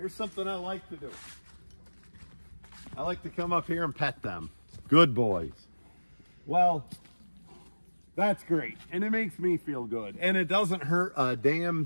something I like to do. I like to come up here and pet them. Good boys. Well, that's great. And it makes me feel good. And it doesn't hurt a damn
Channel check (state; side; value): inverted; both; correlation -1.00